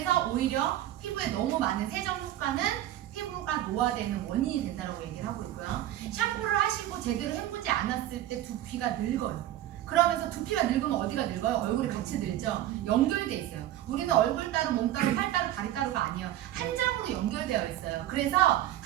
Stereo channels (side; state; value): left; quieter; 13.3 dB